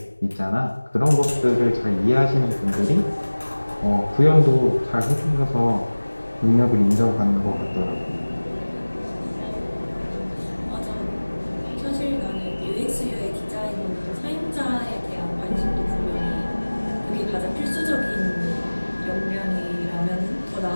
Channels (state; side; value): inverted; both; correlation -1.00